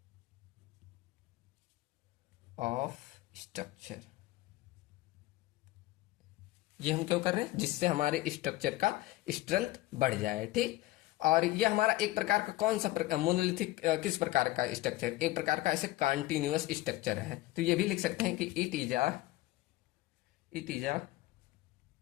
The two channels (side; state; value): right; quieter; 17.6 dB